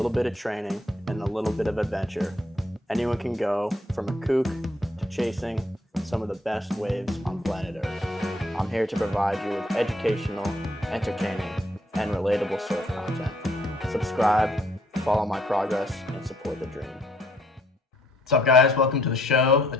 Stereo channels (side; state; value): both; normal; correlation 0.67